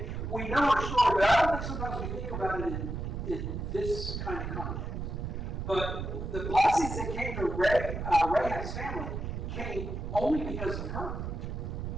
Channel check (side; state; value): right; noise; rumble, 4 dB below the sound